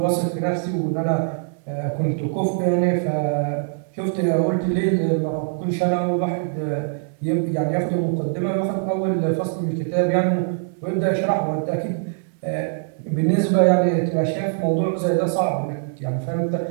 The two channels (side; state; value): left; silent; digital silence